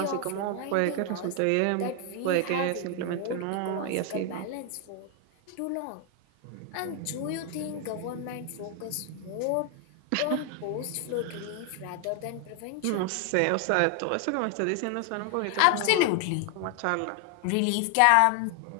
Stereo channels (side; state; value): both; different; correlation 0.00